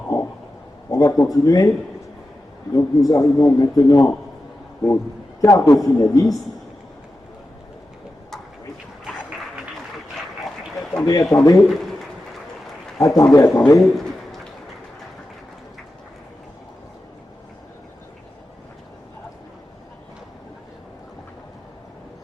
on va continuer. Donc nous arrivons maintenant au quart de finaliste. Attendez.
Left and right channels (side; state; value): both; normal; correlation 0.92